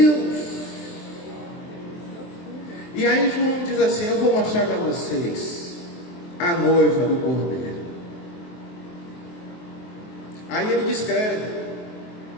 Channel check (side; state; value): right; late; 23 ms